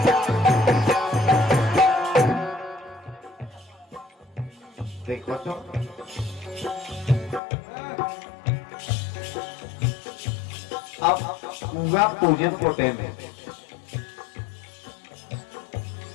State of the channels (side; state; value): right; drops out; at 7.4 s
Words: देखो तो अब पूरा पूजन को टाइम है